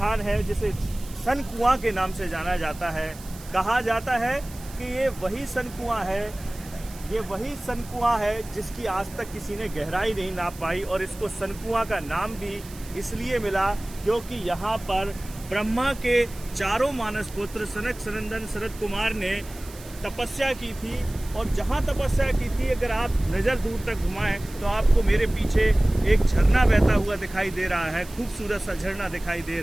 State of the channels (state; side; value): noise; right; hiss, 19 dB below the sound